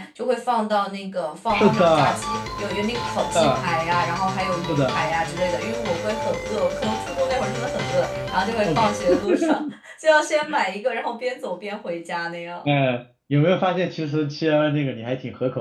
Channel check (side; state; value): both; identical; correlation 1.00